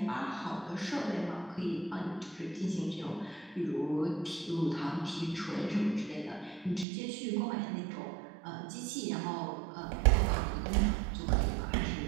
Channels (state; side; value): drops out; left; at 6.9 s